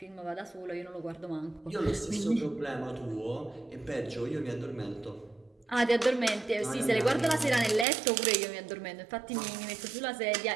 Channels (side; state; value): left; drops out; at 7.9 s